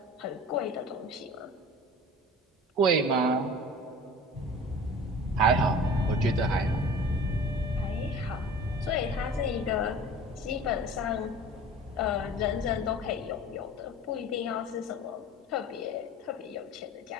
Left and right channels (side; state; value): both; normal; correlation 0.41